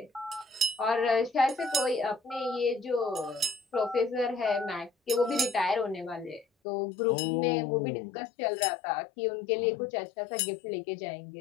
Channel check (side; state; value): right; drops out; at 6.5 s